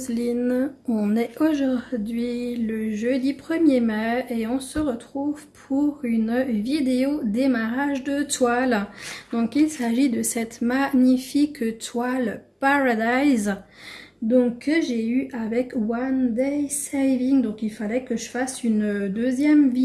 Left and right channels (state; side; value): identical; both; correlation 1.00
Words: On est aujourd'hui le jeudi 1er mai et on se retrouve pour une vidéo démarrage de toile. Donc il s'agit de cette magnifique toile Paradise que j'ai eu avec One Day Saving. Donc il fallait que je fasse une deuxième